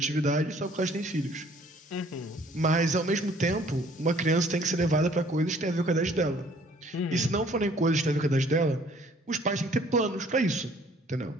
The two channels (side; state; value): both; normal; correlation 0.58